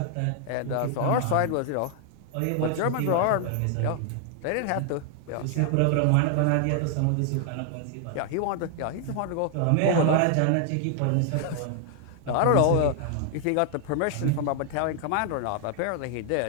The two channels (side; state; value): both; different; correlation 0.00